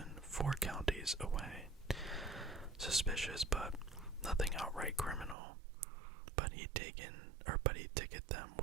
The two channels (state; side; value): drops out; left; at 5.4 s